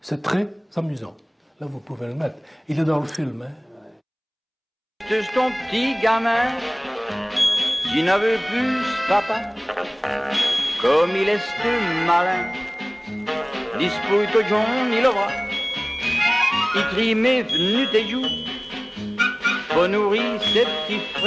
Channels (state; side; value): identical; both; correlation 1.00